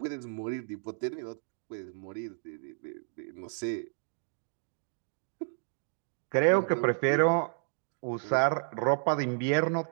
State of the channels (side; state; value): left; silent; digital silence